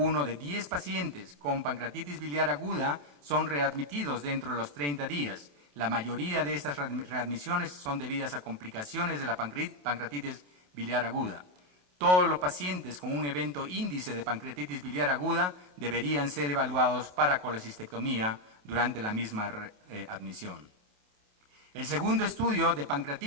de 10 pacientes con pancreatitis biliar aguda son readmitidos dentro de los 30 días. La mayoría de estas readmisiones son debidas a complicaciones de la pancreatitis biliar aguda. Todos los pacientes con un evento índice de pancreatitis biliar aguda deberían ser evaluados para colecistectomía durante la misma admisión. El segundo estudio de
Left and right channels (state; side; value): late; left; 28 ms